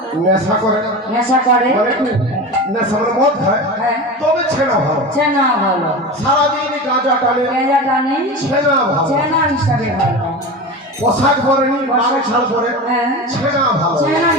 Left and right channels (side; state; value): both; normal; correlation 0.28